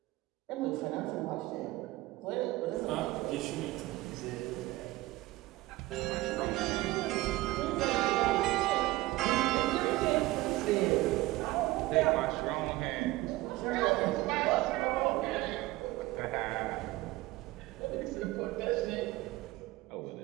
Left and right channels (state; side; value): quieter; left; 18.7 dB